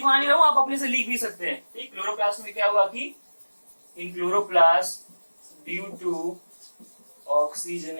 नहीं रहा हूं, आप अपने से लिख भी सकते हैं, ठीक। क्लोरोप्लास्ट में क्या हुआ कि in chloroplast due to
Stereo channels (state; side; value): inverted; both; correlation -1.00